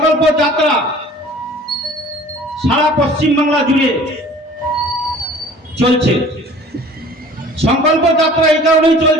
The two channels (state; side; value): normal; both; correlation 0.48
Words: যাত্রা সারা পশ্চিম বাংলা জুড়ে চলছে। সংকল্প যাত্রা এই কারণেই